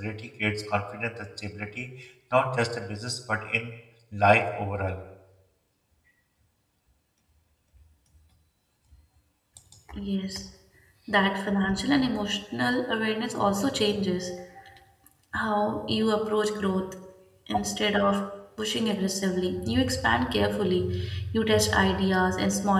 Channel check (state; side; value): identical; both; correlation 1.00